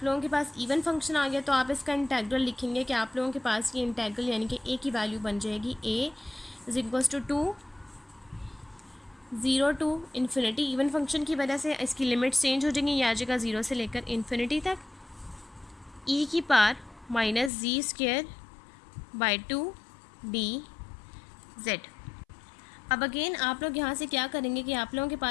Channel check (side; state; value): right; drops out; at 17.5 s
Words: लोगों के पास इवन फंक्शन आ गया, तो आप इसका इंटेग्रल लिखेंगे कि आप लोगों के पास ये इंटेग्रल यानी कि a की वैल्यू बन जाएगी a is equals to 2, 0 to infinity. Even function की वजह से इसकी लिमिट्स चेंज हो जाएंगी, ये आ जाएगा 0 से लेकर इन्फिनिटी तक, ई की power minus z square by 2 d z. अब अगेन आप लोग यहाँ से क्या करेंगे कि आप लोगों के